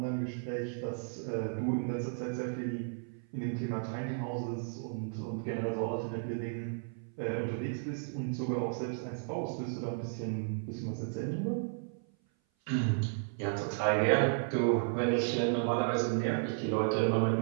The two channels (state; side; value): silent; left; 55 dB below the other